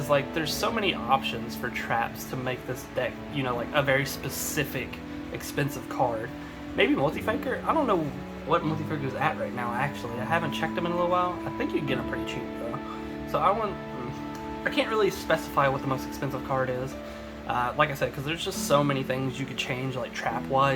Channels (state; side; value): identical; both; correlation 1.00